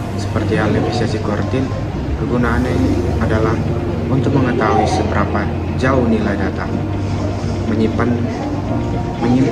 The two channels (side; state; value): both; identical; correlation 1.00